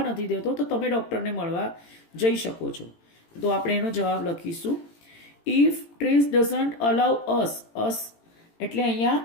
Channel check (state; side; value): late; right; 18 ms